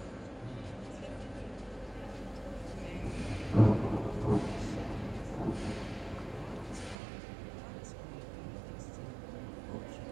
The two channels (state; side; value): drops out; left; at 7.0 s